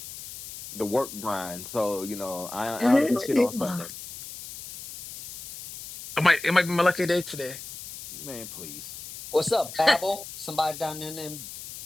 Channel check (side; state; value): left; noise; hiss, 12 dB below the sound